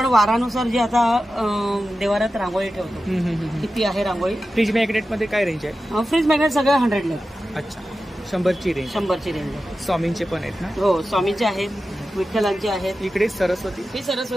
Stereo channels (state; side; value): normal; both; correlation 0.93